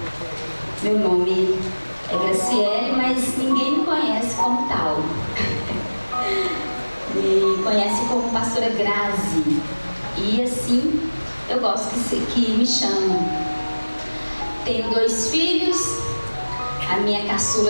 meu nome é Graciele, mas ninguém me conhece como tal. Me conhece como pastora Grazi. E assim eu gosto que me chamam. Tenho 2 filhos. A minha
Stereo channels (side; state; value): both; inverted; correlation -1.00